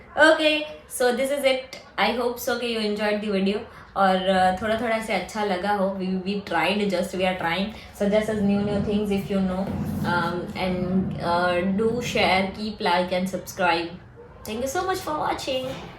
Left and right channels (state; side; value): identical; both; correlation 1.00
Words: Okay, so this is it. I hope so कि यू एंजॉयड द वीडियो और थोड़ा थोड़ा से अच्छा लगा हो। We tried, just we are trying, suggest us new things if you know, and do share, keep like and subscribe. Thank you so much for watching.